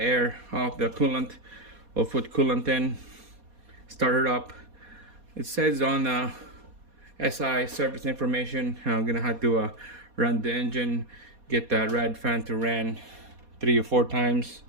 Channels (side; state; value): left; late; 4.2 ms